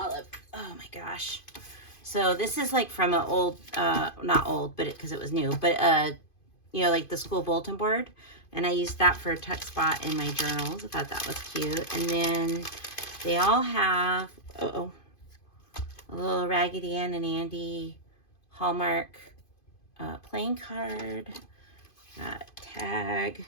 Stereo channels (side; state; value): right; late; 2.5 ms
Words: Oh my gosh. So this is like from an old, not old, but because it was new, but you know, like the school bulletin board. And I used that for a tuck spot in my journals. I thought that was cute. And then they all have, a little Raggedy Ann and Andy Hallmark playing card, tag,